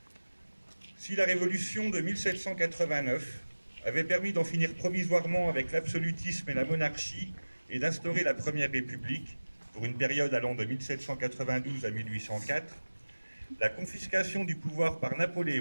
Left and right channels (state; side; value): inverted; both; correlation -1.00